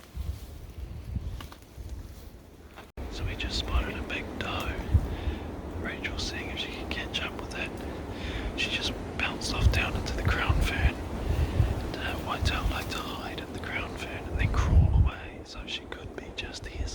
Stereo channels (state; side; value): identical; both; correlation 1.00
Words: So we just spotted a big doe. Rachel's seeing if she can catch up with it. She just bounced off down into the crown fern. And whitetail like to hide in the crown fern and then crawl away, so she could be just here